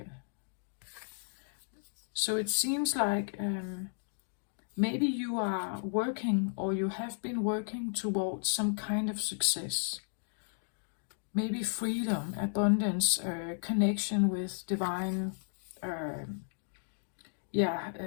So it seems like maybe you are working, or you have been working towards some kind of success. Maybe freedom, abundance, connection with divine,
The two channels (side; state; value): right; silent; digital silence